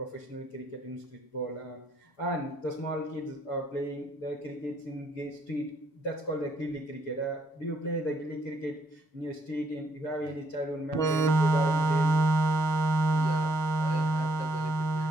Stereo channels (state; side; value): late; right; 7.2 ms